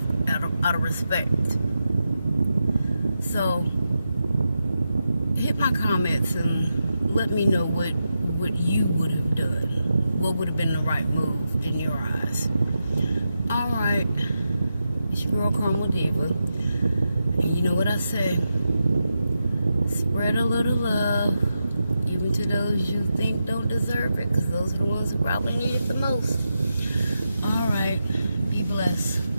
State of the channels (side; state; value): both; inverted; correlation -0.88